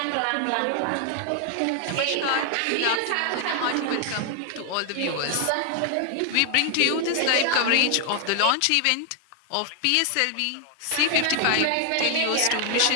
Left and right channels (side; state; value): both; different; correlation 0.00